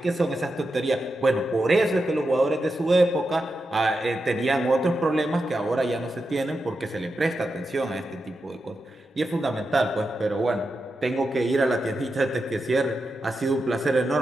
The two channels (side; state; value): both; normal; correlation 0.88